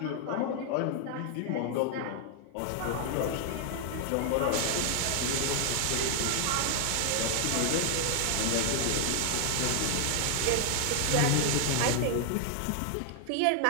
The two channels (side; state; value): both; different; correlation 0.00